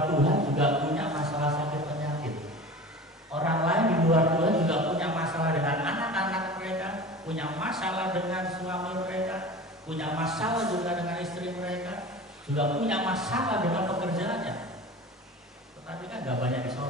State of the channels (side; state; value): both; normal; correlation 0.36